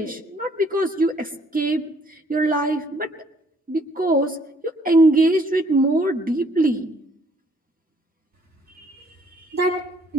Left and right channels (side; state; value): both; normal; correlation 0.63